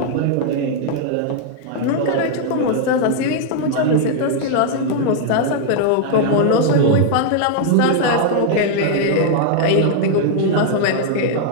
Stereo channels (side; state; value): both; different; correlation 0.00